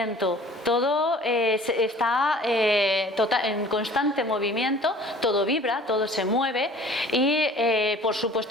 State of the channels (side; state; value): both; normal; correlation 0.48